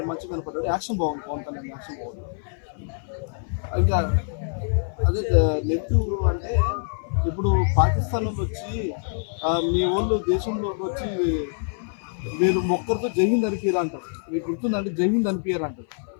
మంచిగా కనపడ్డాడు. యాక్షన్ బాగుంది. పవన్ కళ్యాణ్ యాక్షన్ బాగుంది. ఇంకా అదే నెగిటివ్ అంటే ఇప్పుడు పాకిస్తాన్ వాళ్ళు వచ్చి మీ వాళ్ళు దేశంలోకి వచ్చి మీరు ఒక్కరితో జైహింద్ అనిపించారు అంటారు. మీకు గుర్తుందంటే జైహింద్ అనిపించారు అంటారు.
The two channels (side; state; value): right; silent; 57 dB below the other